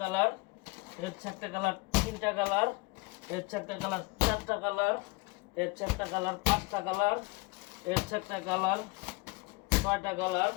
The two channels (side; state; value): right; quieter; 25.5 dB